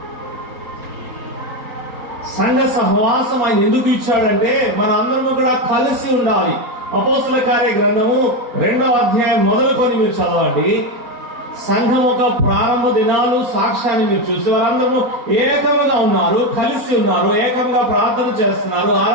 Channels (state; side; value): late; left; 4.2 ms